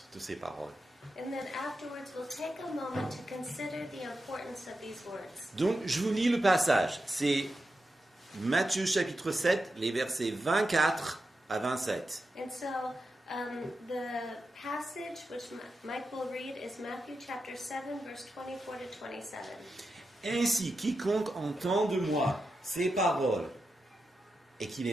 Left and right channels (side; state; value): both; normal; correlation 0.89